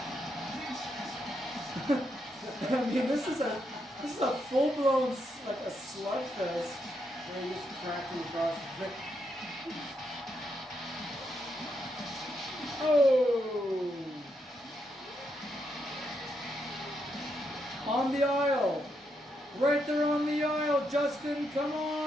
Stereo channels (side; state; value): both; normal; correlation 0.80